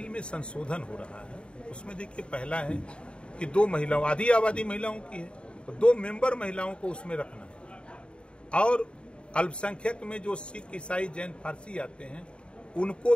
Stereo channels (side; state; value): right; late; 0.055 ms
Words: में संशोधन हो रहा है उसमें देखिए, पहला है कि 2 महिलाओं, आधी आबादी महिलाओं की है, तो 2 मेंबर महिलाओं को उसमें रखना है। और अल्पसंख्यक में जो सिख, ईसाई, जैन, फारसी आते हैं, उनको